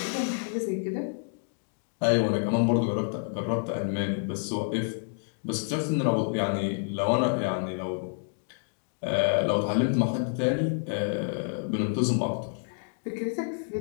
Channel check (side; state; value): right; silent; digital silence